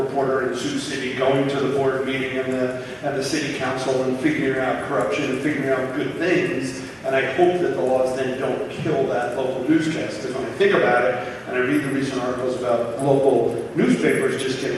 in Sioux City going to the board meeting and the city council and figuring out corruption and figuring out good things. And I hope that the laws then don't kill that local newscast, because when I think about it, and I read the recent articles about local newspapers just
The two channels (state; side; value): identical; both; correlation 1.00